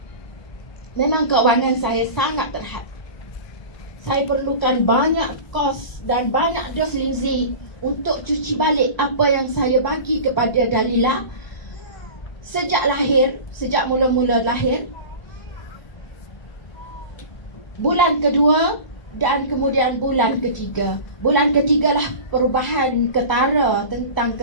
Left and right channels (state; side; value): late; right; 1.0 ms